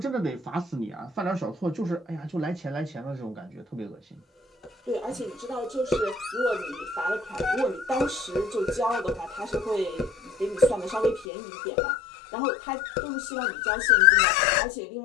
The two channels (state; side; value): drops out; right; at 11.2 s